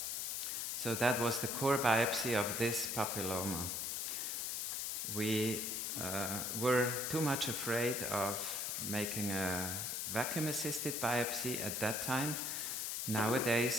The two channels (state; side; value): noise; left; hiss, 1 dB below the sound